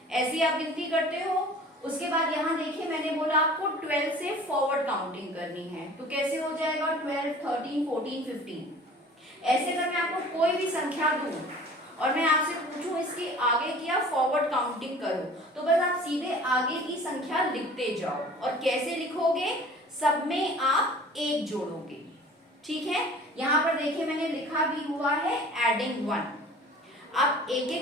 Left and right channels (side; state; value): both; normal; correlation 0.45